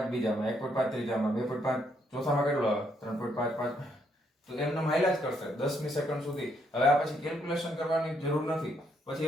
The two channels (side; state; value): both; normal; correlation 0.73